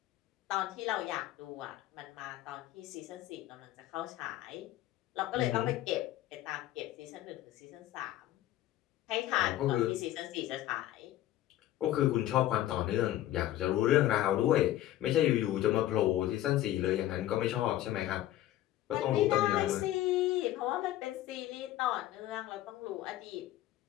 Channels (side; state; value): right; quieter; 14.0 dB